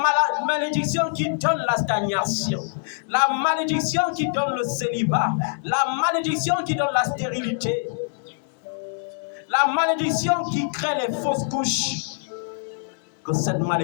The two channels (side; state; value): right; silent; digital silence